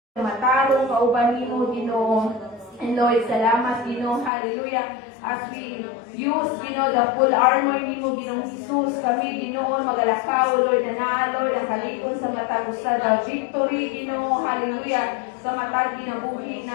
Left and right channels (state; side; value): drops out; right; at 4.3 s